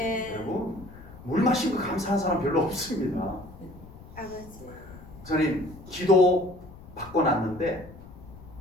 여러분 물 마신 거 감사한 사람 별로 없습니다. 아버지. 목사님 기도 받고 났는데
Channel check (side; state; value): left; noise; rumble, 18 dB below the sound